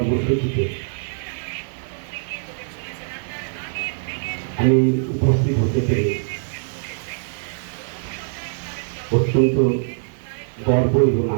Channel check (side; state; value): left; silent; digital silence